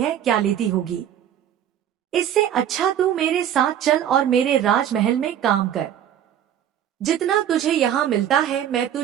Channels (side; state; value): left; quieter; 10.2 dB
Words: क्या लेती होगी? इससे अच्छा तू मेरे साथ चल और मेरे राजमहल में काम कर। जितना तुझे यहाँ मिलता है मैं